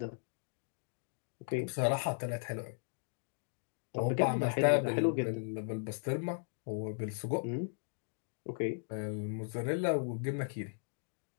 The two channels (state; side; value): silent; right; digital silence